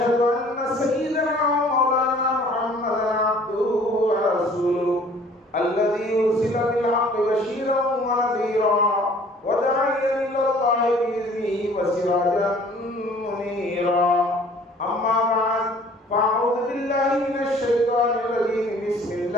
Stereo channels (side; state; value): both; normal; correlation 0.53